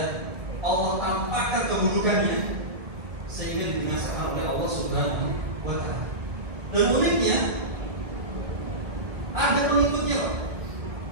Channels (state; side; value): late; left; 1.9 ms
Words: Allah tampakkan keburukannya sehingga dibinasakan oleh Allah Subhanahu wa Ta'ala. Dan uniknya, ada pengikutnya.